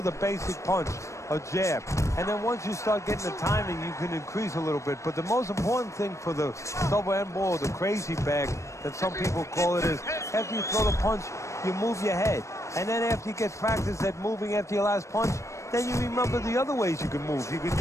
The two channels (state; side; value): late; right; 0.15 ms